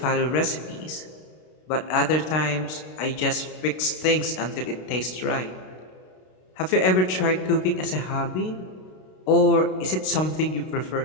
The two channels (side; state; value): right; late; 32 ms